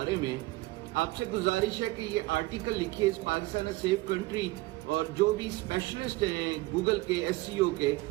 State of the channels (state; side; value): quieter; left; 20.1 dB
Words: में, आपसे गुजारिश है कि ये आर्टिकल लिखिए इस पाकिस्तान अ सेफ कंट्री, और जो भी स्पेशलिस्ट हैं गूगल के एसईओ के,